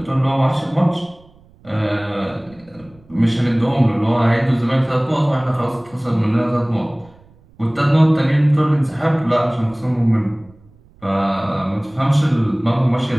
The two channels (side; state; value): right; noise; rumble, 28 dB below the sound